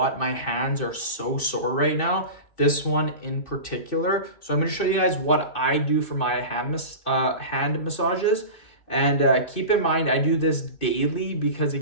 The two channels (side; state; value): right; late; 2.6 ms